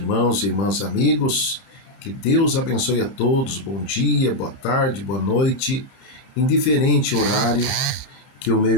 e irmãs amigos, que Deus abençoe a todos, bom dia, boa tarde, boa noite, indiferente horário que o meu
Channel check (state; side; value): late; right; 30 ms